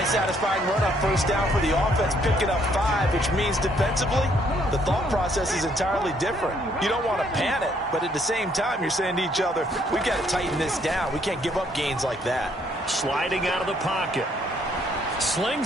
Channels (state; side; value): normal; both; correlation 0.68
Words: satisfying run on first down for the offense, picking up 5, which means defensively, the thought process is entirely different. You don't want to panic, but at the same time, you're saying to each other, we've got to tighten this down. We can't give up gains like that. Sliding out of the pocket.